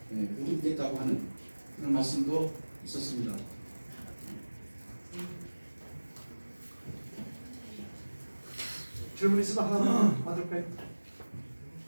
보듬겠다고 하는 그런 말씀도 있었습니다. 질문 있으면 하나만 받을까요?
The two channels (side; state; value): both; inverted; correlation -1.00